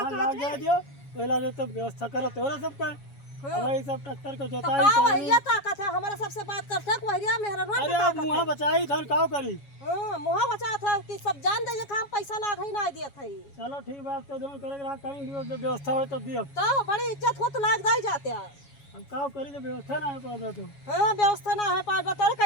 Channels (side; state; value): right; late; 7.2 ms